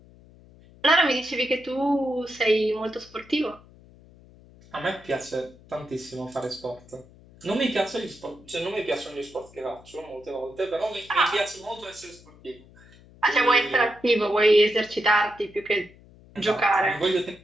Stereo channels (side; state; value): left; noise; hum, 24 dB below the sound